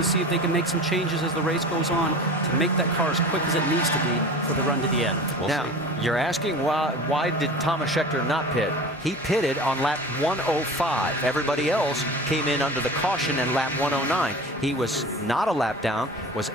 see if they can make some changes as the race goes on to make that car as quick as it needs to be for the run to the end. Now, you're asking why did Thomas Schechter not pit? He pitted on lap 105. Everybody else came in under the caution in lap 109. He was not a lap down, was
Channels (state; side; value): normal; both; correlation 0.36